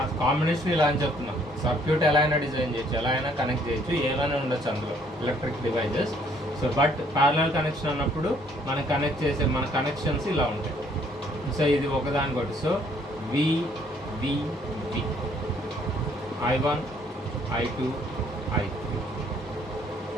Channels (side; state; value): both; normal; correlation 0.64